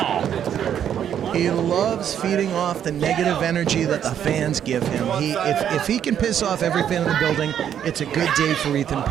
He loves feeding off the negative energy that the fans give him. If he can piss off every fan in the building, it's a good day for Ethan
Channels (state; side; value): quieter; left; 9.4 dB